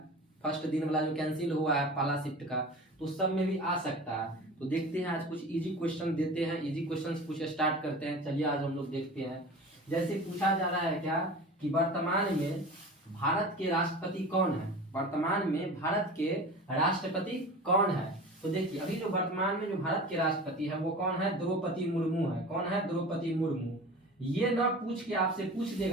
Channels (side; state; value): both; normal; correlation 0.36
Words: फर्स्ट दिन वाला जो कैंसिल हुआ है पहला शिफ्ट का, तो सब में भी आ सकता है। तो देखते हैं आज कुछ इजी क्वेश्चन देते हैं, इजी क्वेश्चंस कुछ स्टार्ट करते हैं। चलिए आज हम लोग देखते हैं। जैसे पूछा जा रहा है क्या कि वर्तमान में भारत के राष्ट्रपति कौन है। वर्तमान में भारत के राष्ट्रपति कौन है? तो देखिए अभी जो वर्तमान में जो भारत के राष्ट्रपति है वो कौन है? द्रौपदी मुर्मू है। कौन है? द्रौपदी मुर्मू। ये ना पूछ के आपसे पूछ